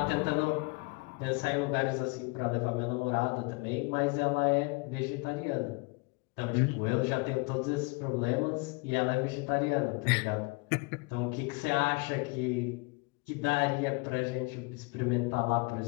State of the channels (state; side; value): quieter; right; 28.0 dB